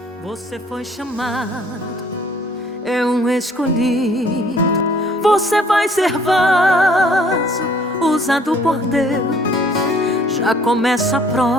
Você foi chamado, é um escolhido. Você vai ser vaso usado por Deus. Já começa a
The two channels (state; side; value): normal; both; correlation 0.59